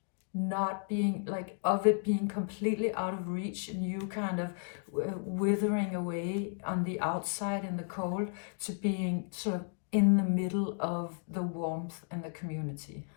not being like of it, being completely out of reach, and you kind of withering away on the outside in the cold, to being sort of in the middle of the warmth and the community.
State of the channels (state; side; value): silent; right; 55 dB below the other